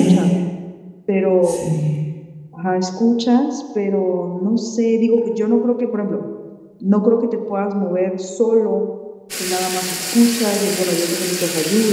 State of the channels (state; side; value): identical; both; correlation 1.00